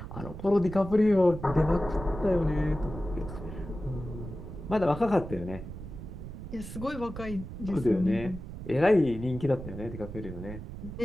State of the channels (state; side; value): noise; right; rumble, 10 dB below the sound